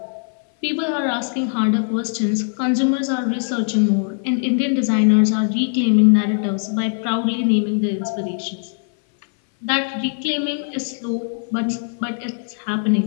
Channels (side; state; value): right; silent; 59 dB below the other